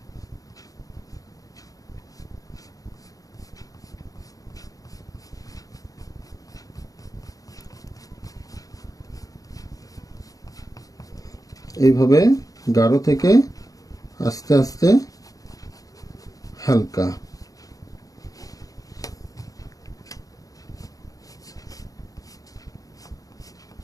এইভাবে গাঢ় থেকে আস্তে আস্তে হালকা।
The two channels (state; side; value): late; right; 0.17 ms